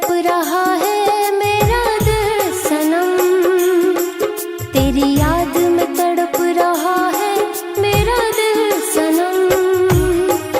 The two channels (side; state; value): both; identical; correlation 1.00